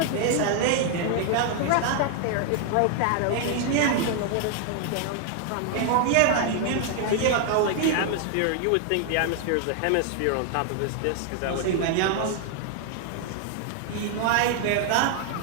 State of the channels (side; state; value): both; different; correlation 0.00